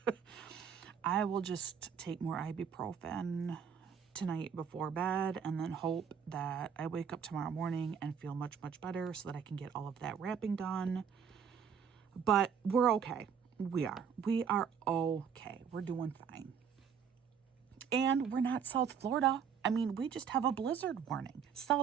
I will just take more ibuprofen tonight before bed and then hope that I wake up tomorrow morning and feel much, much better so that I can get all of that wrapping done. But we're okay. We are okay. We're doing fine. And we're not South Florida. I mean, we just have a blizzard warning.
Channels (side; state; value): left; quieter; 7.2 dB